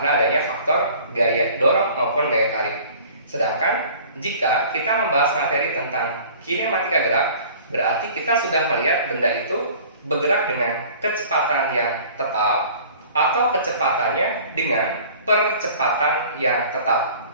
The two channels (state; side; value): inverted; both; correlation -0.47